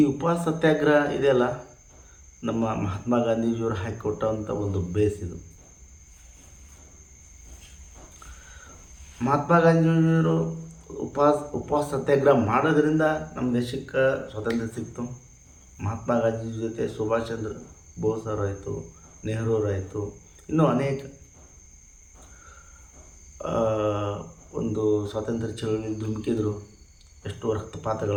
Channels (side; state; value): both; identical; correlation 1.00